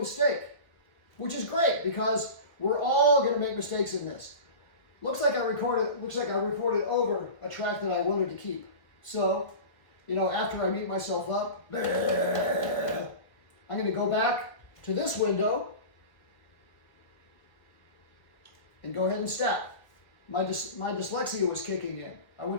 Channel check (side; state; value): right; late; 1.6 ms